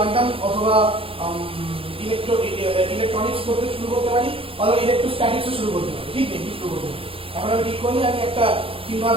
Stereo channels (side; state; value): left; late; 0.27 ms